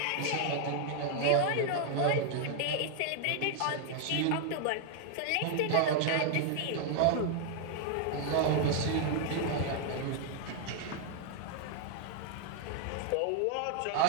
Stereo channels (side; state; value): both; different; correlation 0.00